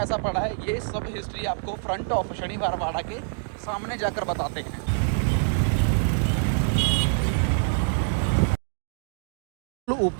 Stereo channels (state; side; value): silent; left; 61 dB below the other